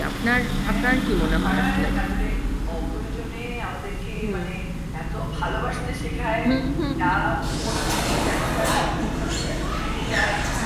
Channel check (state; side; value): identical; both; correlation 1.00